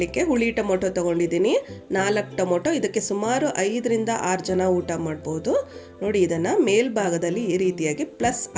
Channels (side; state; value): both; identical; correlation 1.00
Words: ಹುಳಿ ಟೊಮೊಟೊ ತೊಗೊಂಡಿದ್ದೀನಿ, 4 ಟೊಮೊಟೊ. ಇದಕ್ಕೆ ಸುಮಾರು 5 ರಿಂದ 6 ಜನ ಊಟ ಮಾಡ್ಬೋದು. ನೋಡಿ, ಇದನ್ನು ಮೇಲ್ಭಾಗದಲ್ಲಿ ಈ ರೀತಿಯಾಗಿ ಪ್ಲಸ್